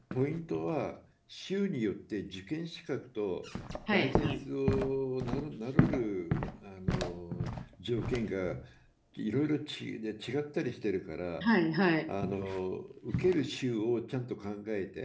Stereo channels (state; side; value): identical; both; correlation 1.00